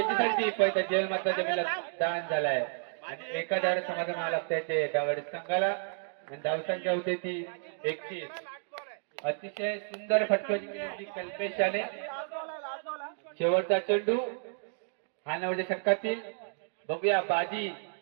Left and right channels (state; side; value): silent; left; 57 dB below the other